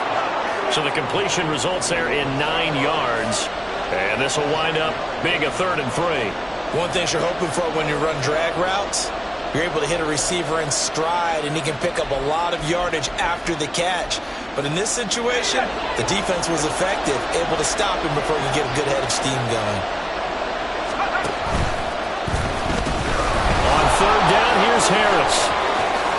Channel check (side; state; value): both; identical; correlation 1.00